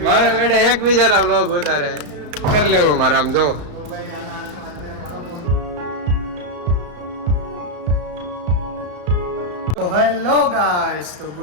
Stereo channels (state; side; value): late; left; 34 ms